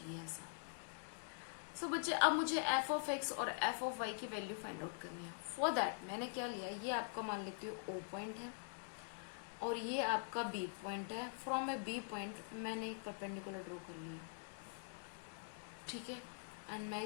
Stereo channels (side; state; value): right; silent; digital silence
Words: ऐसा। सो बच्चे, अब मुझे f ऑफ x और f ऑफ y की वैल्यू फाइंड आउट करनी है। फॉर दैट मैंने क्या लिया, ये आपका मान लेती हूँ O पॉइंट है और ये आपका B पॉइंट है। फ्रॉम ए B पॉइंट मैंने एक परपेंडिकुलर ड्रॉ कर लिया, ठीक है, एंड मैं